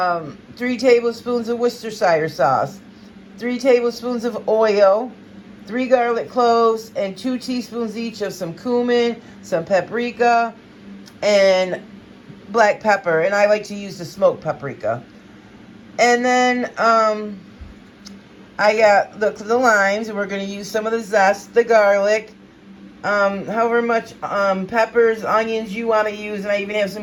tablespoons of Worcestershire sauce. 3 tablespoons of oil, 3 garlic cloves, and 2 teaspoons each of some cumin, some paprika, and black pepper. And I like to use the smoked paprika. And then I got the limes, and we're going to use some of the zest, the garlic, however much peppers, onions you want to use, and I even have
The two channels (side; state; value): both; identical; correlation 1.00